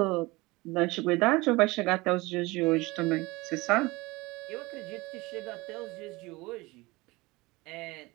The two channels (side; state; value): left; quieter; 22.4 dB